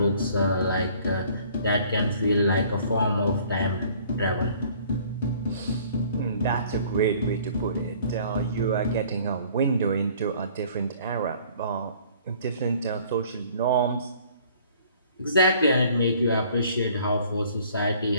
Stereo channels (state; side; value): inverted; both; correlation -0.55